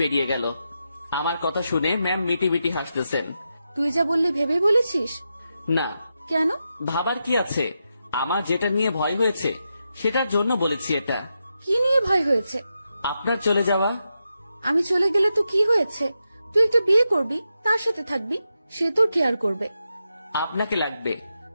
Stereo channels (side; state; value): both; inverted; correlation -0.87